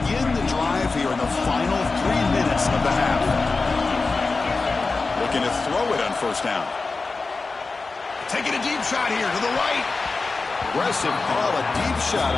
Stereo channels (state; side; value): quieter; right; 3.9 dB